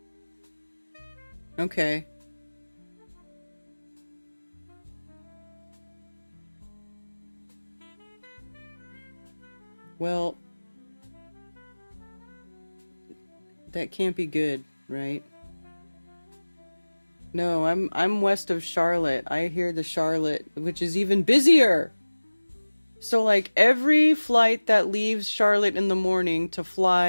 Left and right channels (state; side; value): inverted; both; correlation -1.00